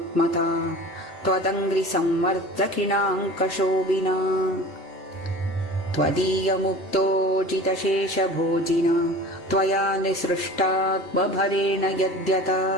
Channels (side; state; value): both; normal; correlation 0.39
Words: त्वदङ्घ्रिसंवर्धकिणाङ्कशोभिना त्वदीयमुक्तोजितशेषभोजिना त्वया निसृष्टात्मभरेण यद्यथा